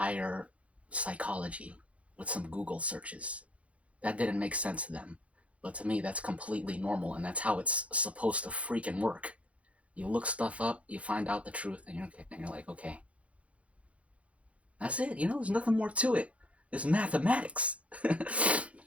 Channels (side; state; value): left; late; 0.064 ms